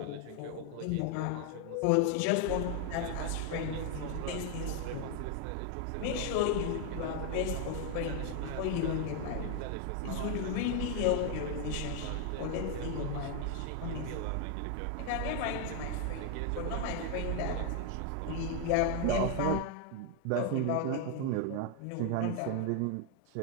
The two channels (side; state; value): both; different; correlation 0.01